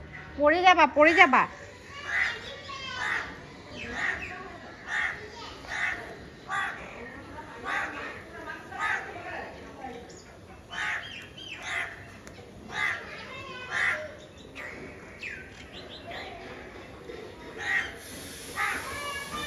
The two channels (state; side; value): identical; both; correlation 1.00